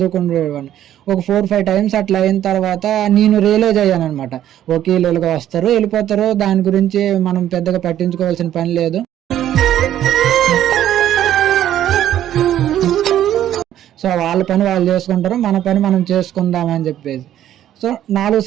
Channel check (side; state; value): left; quieter; 11.7 dB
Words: ఒక 4-5 times అట్లా అయిన తర్వాత నేను రియలైజ్ అయ్యాను అనమాట. ఓకే, వీళ్ళుగా వస్తారు, వెళ్ళిపోతారు, దాని గురించి మనం పెద్దగా పట్టించుకోవాల్సిన పని లేదు. సో వాళ్ళ పని వాళ్ళు చేసుకుంటారు, మన పని మనం చేసుకుందాం అని చెప్పేసి. సో 4